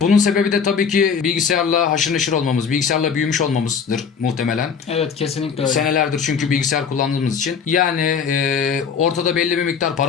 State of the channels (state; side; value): quieter; right; 6.4 dB